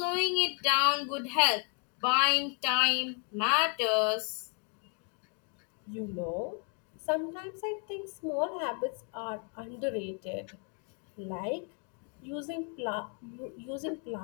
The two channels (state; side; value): quieter; right; 35.8 dB